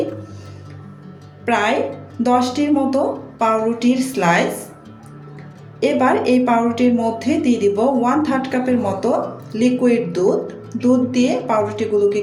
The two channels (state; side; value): identical; both; correlation 1.00